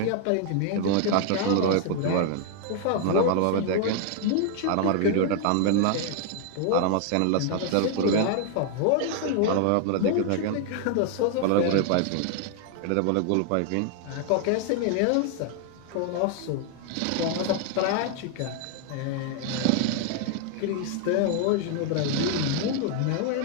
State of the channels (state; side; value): different; both; correlation 0.00